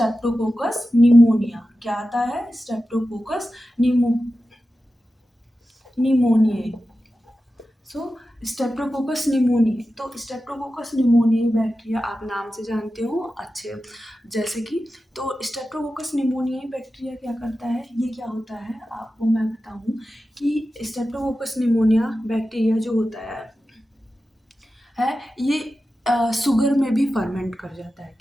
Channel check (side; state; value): both; normal; correlation 0.93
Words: निमोनिया। क्या आता है? स्ट्रेप्टोकोकस निमोनियाe। सो स्ट्रेप्टोकोकस निमोनियाe, तो स्ट्रेप्टोकोकस निमोनियाe बैक्टीरिया आप नाम से जानते हो अच्छे, जैसे कि तो स्ट्रेप्टोकोकस निमोनियाe बैक्टीरिया क्या करता है? ये क्या होता है आपको मैं बताऊं कि स्ट्रेप्टोकोकस निमोनिया बैक्टीरिया जो होता है है ये शुगर में भी फर्मेंट कर जाता है।